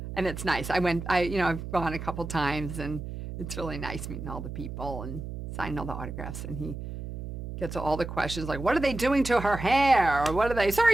And it's nice. I've gone a couple times, and it's really nice meeting all the people and signing all the autographs. And he gets all the questions like, what are they doing to her hair? Or what are they,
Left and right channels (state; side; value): noise; right; hum, 8 dB below the sound